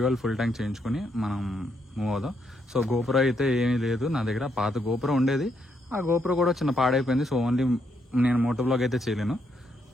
ఫుల్ ట్యాంక్ చేయించుకుని మనం మూవ్ అవుదాం. సో గోపురం అయితే ఏమీ లేదు నా దగ్గర, పాత గోపురం ఉండేది. ఆ గోపురం కూడా చిన్న పాడైపోయింది. సో ఓన్లీ నేను మోటో బ్లాగ్ అయితే చేయలేను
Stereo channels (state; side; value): normal; both; correlation 0.76